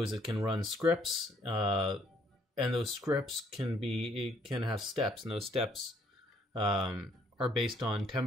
is it can run scripts, and those scripts can have steps, and those steps are based on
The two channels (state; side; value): normal; both; correlation 0.66